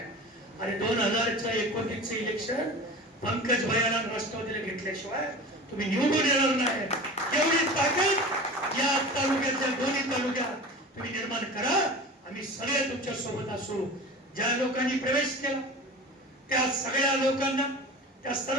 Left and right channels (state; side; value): normal; both; correlation 0.35